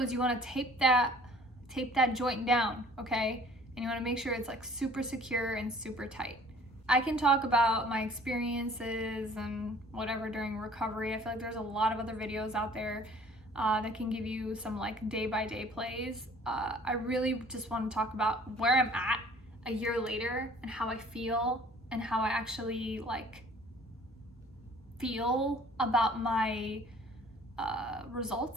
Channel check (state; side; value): normal; both; correlation 0.53